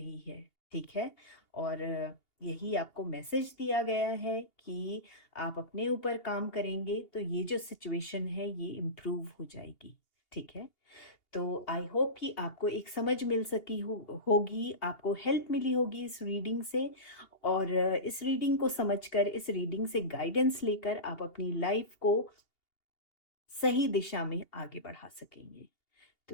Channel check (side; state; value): right; late; 2.8 ms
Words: है। ठीक है, और यही आपको मैसेज दिया गया है कि आप अपने ऊपर काम करेंगे तो ये जो सिचुएशन है ये इम्प्रूव हो जाएगी। ठीक है, तो आई होप कि आपको एक समझ मिल सकी होगी, आपको हेल्प मिली होगी इस रीडिंग से, और इस रीडिंग को समझकर, इस रीडिंग से गाइडेंस लेकर आप अपनी लाइफ को सही दिशा में आगे बढ़ा सकेंगे। तो